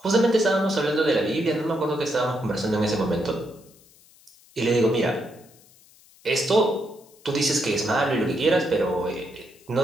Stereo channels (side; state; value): left; noise; hiss, 27 dB below the sound